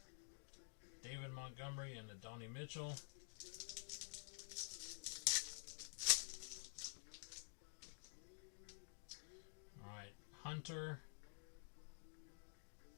David Montgomery, and Adonai Mitchell. Alright, Hunter.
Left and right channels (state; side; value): silent; right; digital silence